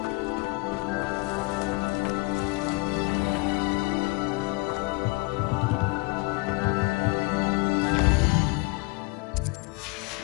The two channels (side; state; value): right; quieter; 25.8 dB